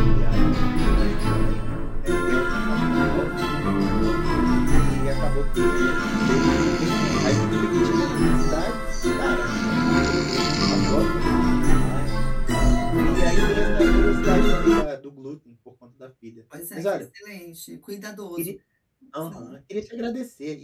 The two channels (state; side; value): identical; both; correlation 1.00